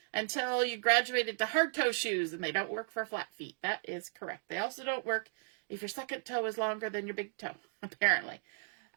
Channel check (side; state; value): left; silent; digital silence